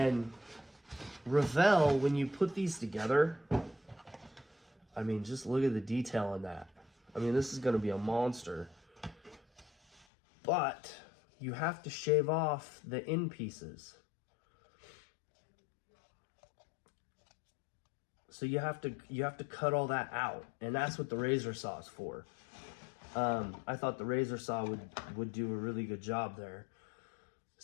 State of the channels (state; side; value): drops out; right; at 10.1 s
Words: Revell, when you put these together, just look at the detail on that. This is going to be a monster. But you have to shave off the end pieces. So you have to cut all that out, and that's what the razor saw is for. I thought the razor saw would do a really good job there.